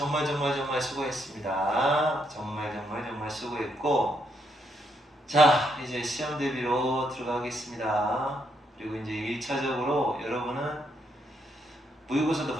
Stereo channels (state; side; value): normal; both; correlation 0.76